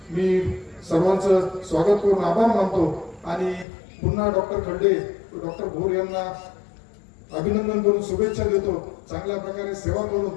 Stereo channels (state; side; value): drops out; right; at 3.7 s